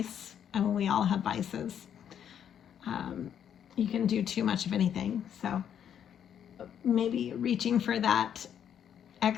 I mean, we all have vices. You can do too much of anything. So maybe reaching for that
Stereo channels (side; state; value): right; quieter; 9.0 dB